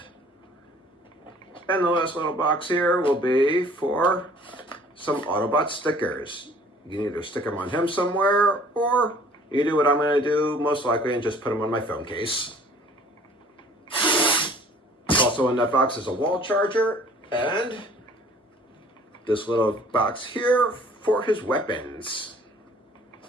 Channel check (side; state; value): both; normal; correlation 0.53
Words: And the last little box here will be for some Autobot stickers. You can either stick them on him somewhere, or you do what I'm going to do most likely and just put them on my phone case. Also in that box is a wall charger and this little box here for his weapons.